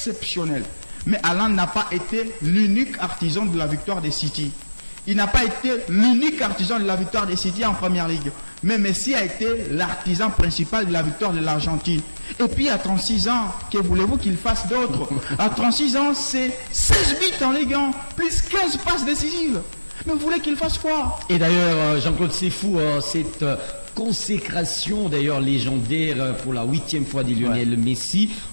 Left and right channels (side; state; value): both; inverted; correlation -1.00